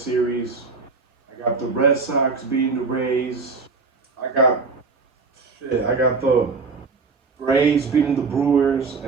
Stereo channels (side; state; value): left; quieter; 4.4 dB